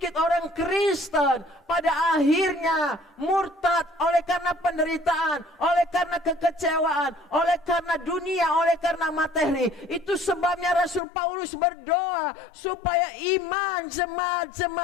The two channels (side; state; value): right; drops out; at 11.0 s